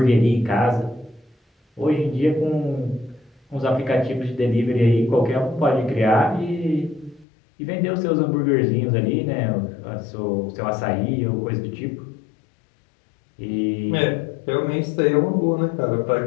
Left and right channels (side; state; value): right; drops out; at 7.2 s